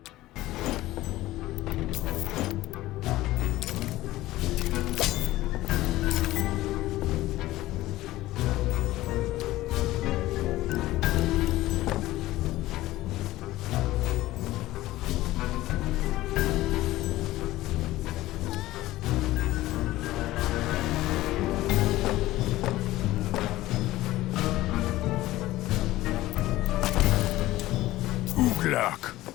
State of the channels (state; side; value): quieter; right; 16.7 dB